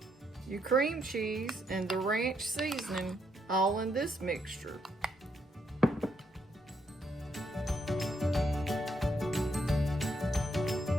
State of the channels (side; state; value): both; normal; correlation 0.76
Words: your cream cheese, and the ranch seasoning all in this mixture.